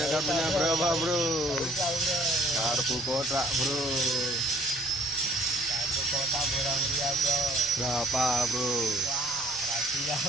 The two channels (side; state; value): left; noise; rumble, 26 dB below the sound